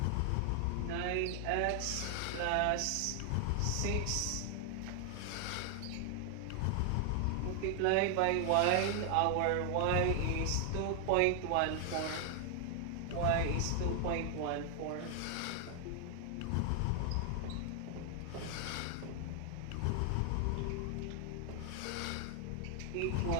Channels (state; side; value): different; both; correlation 0.00